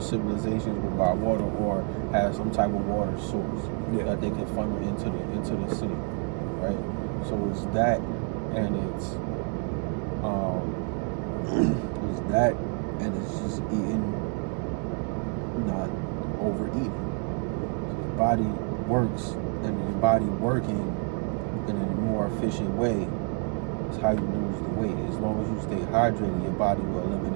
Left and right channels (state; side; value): quieter; left; 37.2 dB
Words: will buy water or have some type of water source that they can funnel into the city, right? So it's that, and it's just eating, not overeating. The body works, and the body working in a more efficient way is how you lose the weight. As long as you stay hydrated, your body will